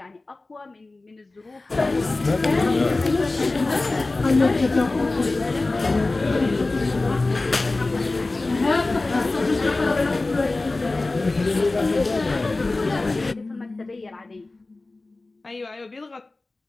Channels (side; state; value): right; quieter; 3.2 dB